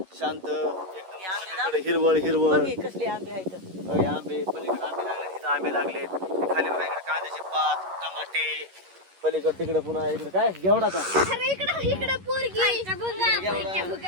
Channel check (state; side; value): late; left; 11 ms